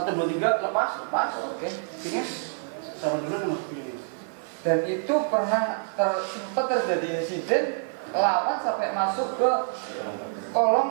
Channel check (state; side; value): silent; left; digital silence